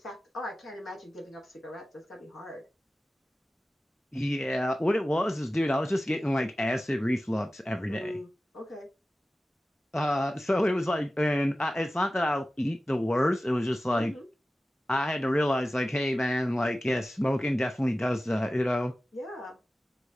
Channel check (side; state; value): both; normal; correlation 0.95